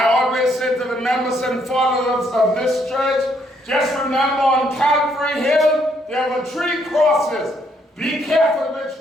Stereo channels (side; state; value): both; normal; correlation 0.71